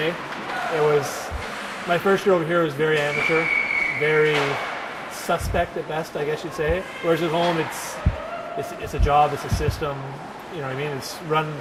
It was, my first year over here was very amateur, very suspect at best, I guess you'd say. Whereas at home, it's a job, it's a system. You know what I mean? It's run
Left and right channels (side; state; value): both; identical; correlation 1.00